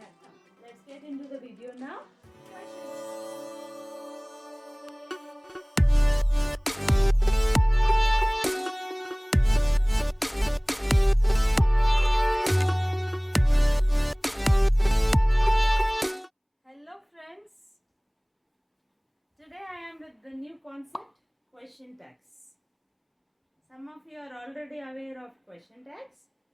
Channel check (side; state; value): both; identical; correlation 1.00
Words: Let's get into the video now. Hello friends, today I am with the new concept, question tags. Some of you are already aware of question tags.